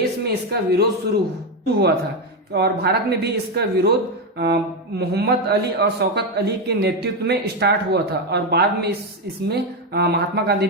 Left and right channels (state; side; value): normal; both; correlation 0.08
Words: में इसका विरोध शुरू हुआ था और भारत में भी इसका विरोध मोहम्मद अली और शौकत अली के नेतृत्व में स्टार्ट हुआ था और बाद में इसमें महात्मा गांधी